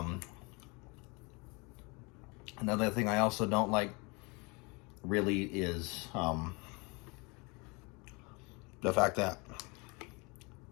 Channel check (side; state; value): right; quieter; 28.5 dB